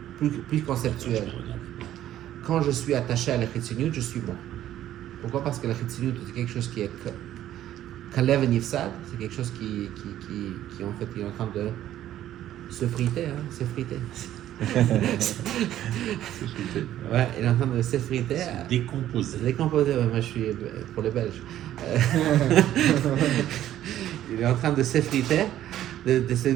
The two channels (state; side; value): quieter; left; 12.4 dB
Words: plus conceptuel. Quand je suis attaché à la Chitsoniut, je suis mort. Pourquoi? Parce que la Chitsoniut, c'est quelque chose qui est Kalev Nifsad, c'est quelque chose qui en fait est en train de se friter, s'effriter. Ouais, il est en train de s'effriter. Décomposé. Se décomposer, ouais, moi je suis pour les Belges. Il est en train de s'effriter, de se